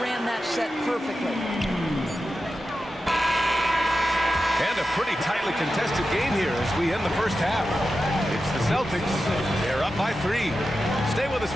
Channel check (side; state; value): both; normal; correlation 0.91